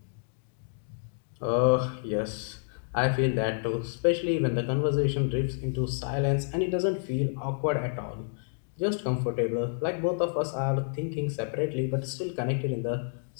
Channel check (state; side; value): silent; right; digital silence